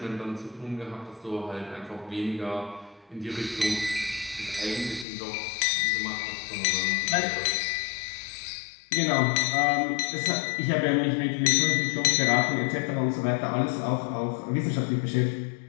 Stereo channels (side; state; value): right; drops out; at 5.1 s